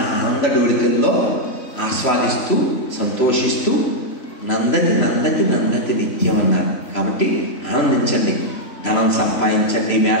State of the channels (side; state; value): right; late; 3.0 ms